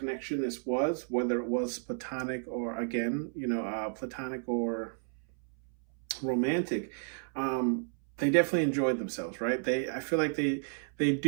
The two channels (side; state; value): left; silent; 56 dB below the other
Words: this was, whether it was platonic or again, platonic or romantic. They definitely enjoyed themselves, right? I feel like they